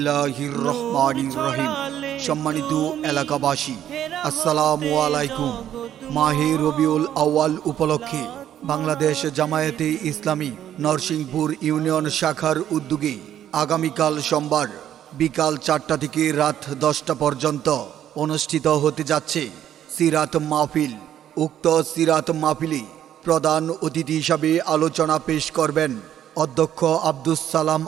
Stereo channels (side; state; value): left; quieter; 10.7 dB